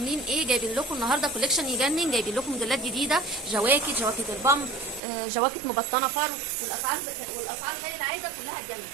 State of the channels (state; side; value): drops out; left; at 5.0 s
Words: ايه؟ جايبين لكم النهارده كوليكشن يجنن. جايبين لكم موديلات جديده، جواكت البامب، جواكت مبطنه فرو، والاسعار زي العاده كلها تجنن.